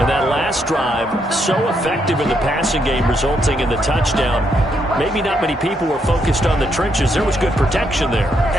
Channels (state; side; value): normal; both; correlation 0.77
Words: that last drive, so effective in the passing game, resulting in the touchdown. Maybe not many people were focused on the trenches. There was good protection there.